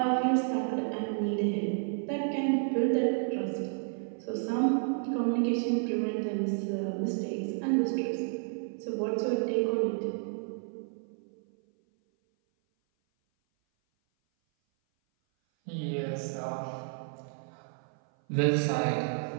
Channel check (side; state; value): left; silent; 56 dB below the other